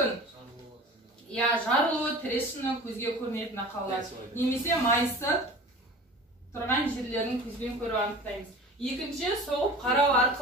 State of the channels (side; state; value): both; normal; correlation 0.39